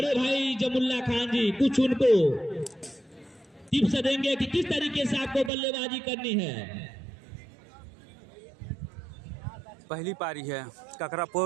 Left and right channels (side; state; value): left; drops out; at 5.5 s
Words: भाई जमुल्ला खान जी कुछ उनको टिप्स देंगे कि किस तरीके से आपको बल्लेबाजी करनी है। पहली पारी है